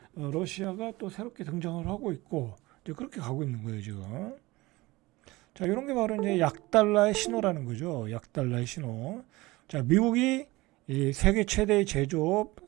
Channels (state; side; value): quieter; left; 20.6 dB